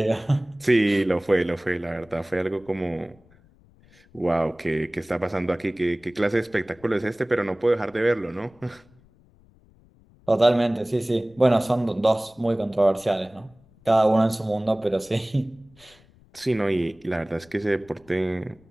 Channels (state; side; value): noise; left; rumble, 29 dB below the sound